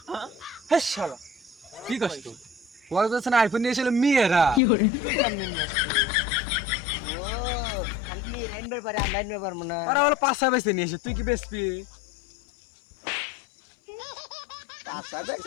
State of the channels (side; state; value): right; drops out; at 4.6 s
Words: হ্যাঁ শালা, কি কষ্ট কক্সবাজার আইফোন নিয়ে এসে মেয়েরা, তুই কেমনে নিয়ে আসছিস? ও খালি নিয়ে আনবার পারে, আমরা আনবার পারবো না। ওরা বলে পাঁচটা বেচতে নিয়ে এসে, তুই কি বেচবি? আশা